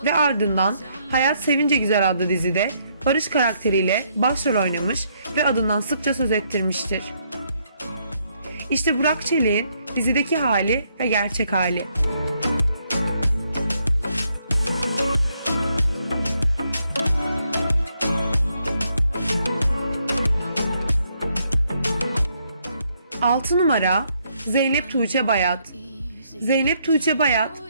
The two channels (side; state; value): both; inverted; correlation -0.73